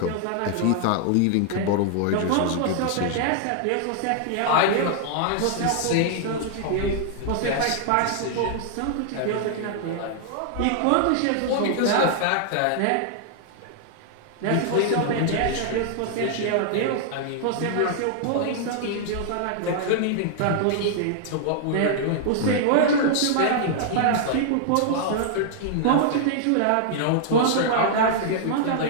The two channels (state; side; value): different; both; correlation -0.01